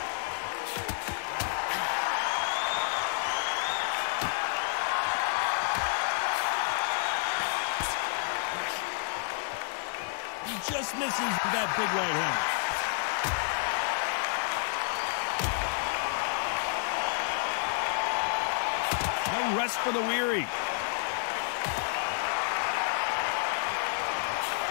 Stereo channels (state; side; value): silent; right; digital silence